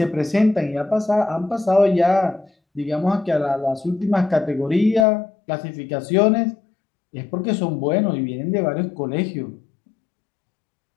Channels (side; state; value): right; drops out; at 5.1 s